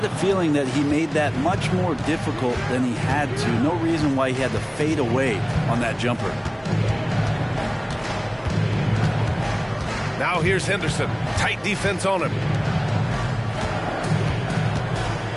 a feeling that he made that much more difficult than he had to. No reason why he had to fade away on that jumper. Now here's Henderson. Tight defense on him.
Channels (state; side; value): identical; both; correlation 1.00